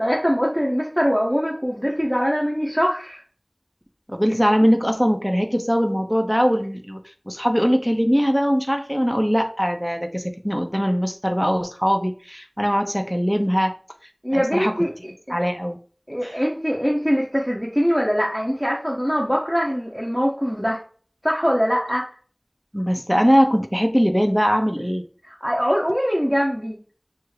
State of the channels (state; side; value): identical; both; correlation 1.00